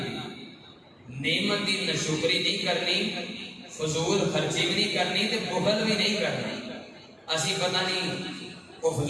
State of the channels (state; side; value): identical; both; correlation 1.00